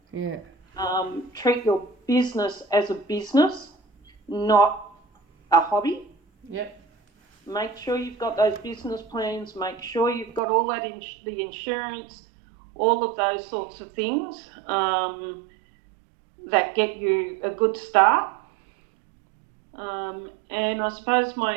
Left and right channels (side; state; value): left; drops out; at 10.4 s